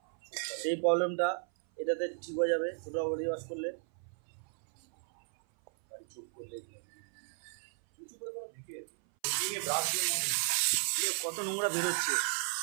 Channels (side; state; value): left; silent; 55 dB below the other